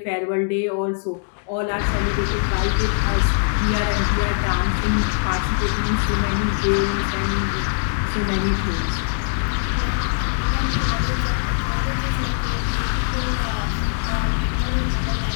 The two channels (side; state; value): right; silent; digital silence